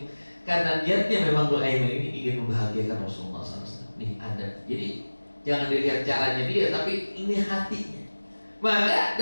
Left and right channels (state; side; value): inverted; both; correlation -1.00